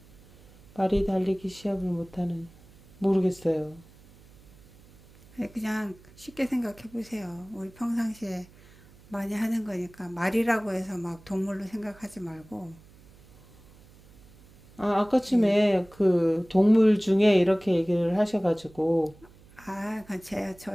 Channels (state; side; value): noise; right; hum, 25 dB below the sound